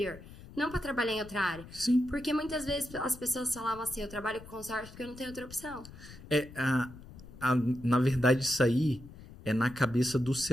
Não para trabalhar em outra área. Sim. Porque muitas vezes as pessoas falavam assim, eu trabalho com consórcio porque eu não tenho outra opção. Na verdade, isso aí é na cabeça do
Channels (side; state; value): left; noise; rumble, 17 dB below the sound